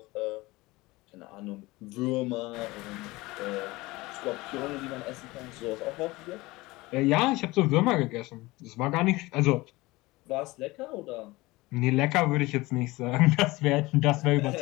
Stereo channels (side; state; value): right; quieter; 21.1 dB